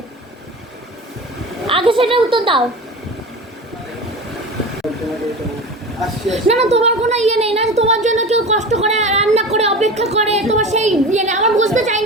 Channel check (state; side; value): normal; both; correlation 0.31